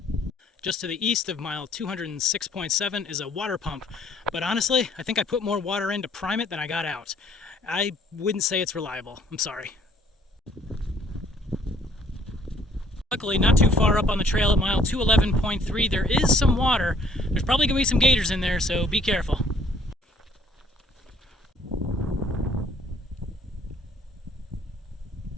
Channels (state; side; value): normal; both; correlation 0.61